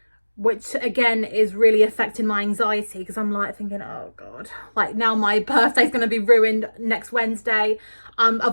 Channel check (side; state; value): both; inverted; correlation -1.00